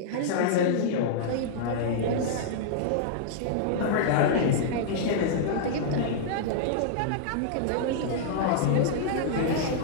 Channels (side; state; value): both; different; correlation -0.02